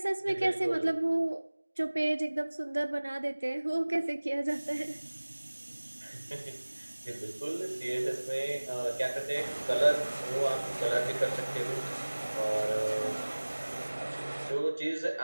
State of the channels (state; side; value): inverted; both; correlation -1.00